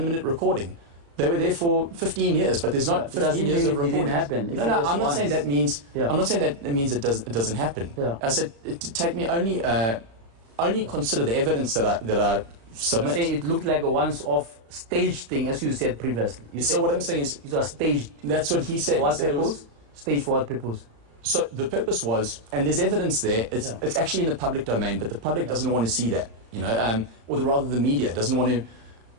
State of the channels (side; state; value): left; late; 35 ms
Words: recording. They were there for 15 years, but there's not 15 years of reporting. It didn't happen. No, I'm not saying that means. I'm not saying that it means it doesn't happen. I said take me only consider the evidence that I submit. I'm saying it looked like a once-off staged thing, as you said previously. So what I'm saying is it was staged. That's what he said. For what purpose? Staged for what purpose? So the purpose was, and there's evidence there. It's actually in the public domain, but the public doesn't want to see that. You know, or rather the media doesn't want to